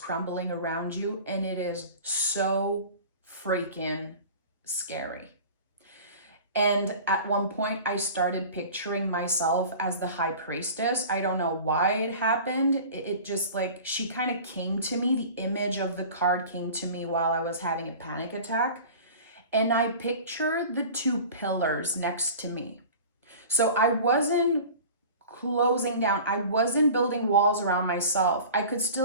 around you, and it is so freaking scary. And at one point, I started picturing myself as the High Priestess. I don't know why it happened. It just she kind of came to me. The image of the card came to me while I was having a panic attack. And I pictured the 2 pillars next to me. So I wasn't closing down. I wasn't building walls around myself. I could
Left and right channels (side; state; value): both; inverted; correlation -0.39